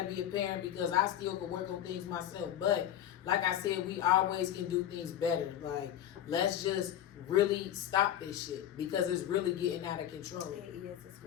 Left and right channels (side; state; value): right; quieter; 11.0 dB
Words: be a parent because I still can work on things myself. But like I said, we always can do things better. Like, let's just really stop this shit because it's really getting out of control. It is.